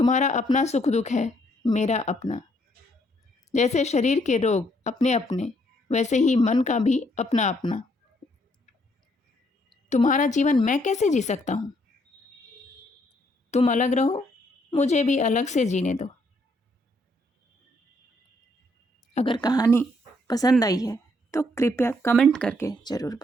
अपना सुख दुख है, मेरा अपना। जैसे शरीर के रोग अपने अपने, वैसे ही मन का भी अपना अपना। तुम्हारा जीवन मैं कैसे जी सकता हूँ? तुम अलग रहो, मुझे भी अलग से जीने दो। अगर कहानी पसंद आई है तो कृपया कमेंट करके ज़रूर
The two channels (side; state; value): both; normal; correlation 0.70